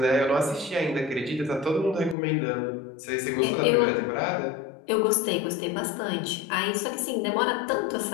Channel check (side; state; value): right; drops out; at 2.1 s